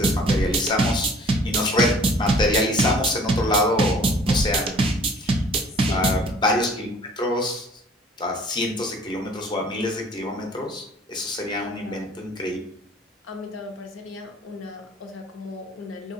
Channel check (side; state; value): both; normal; correlation 0.53